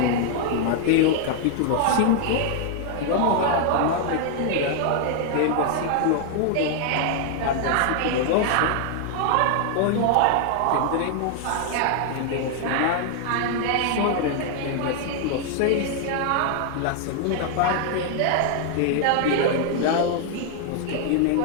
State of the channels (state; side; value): different; both; correlation 0.00